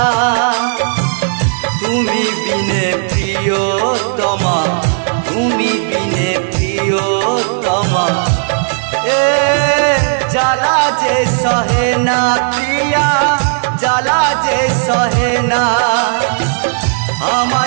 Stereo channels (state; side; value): silent; left; digital silence